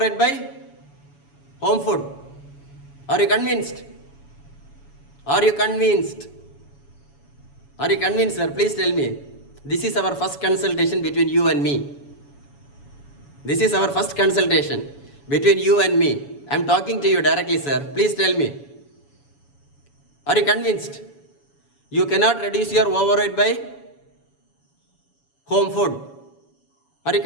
by home food. Are you convinced? Are you convinced? Are you convinced, sir? Please tell me. This is our first consultation between you and me. This is our first consultation between you and me. I am talking to you directly, sir. Please tell me. Are you convinced? You cannot reduce your overweight by home food. Are you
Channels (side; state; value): right; late; 7.1 ms